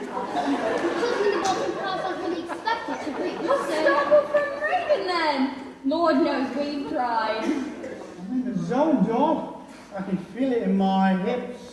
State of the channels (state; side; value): identical; both; correlation 1.00